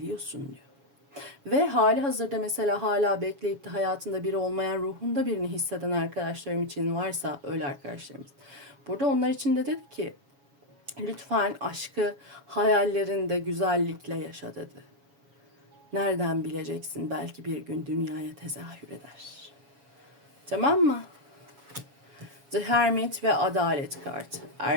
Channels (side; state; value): left; late; 7.2 ms